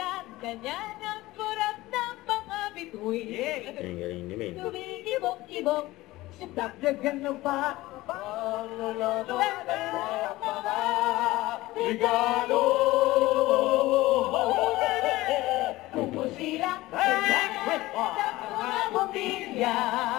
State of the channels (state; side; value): quieter; right; 18.4 dB